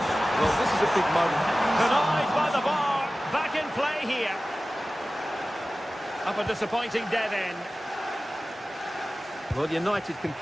Well, this is a big moment. Denied by the bar. Back in play here. Up a disappointing dead end. Well, United can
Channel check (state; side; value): normal; both; correlation 0.96